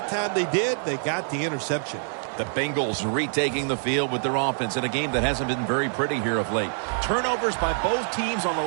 time they did, they got the interception. The Bengals retaking the field with their offense in a game that hasn't been very pretty here of late. Turnovers by both teams on the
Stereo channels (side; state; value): left; silent; digital silence